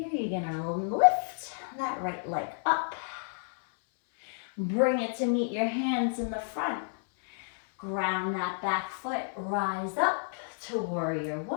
you're gonna lift that right leg up. Bring it to meet your hands in the front. Ground that back foot, rise up to warrior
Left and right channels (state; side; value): silent; right; 57 dB below the other